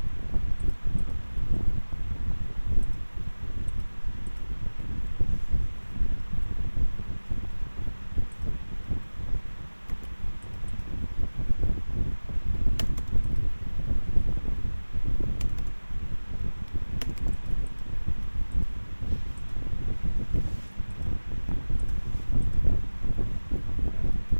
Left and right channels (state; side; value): inverted; both; correlation -1.00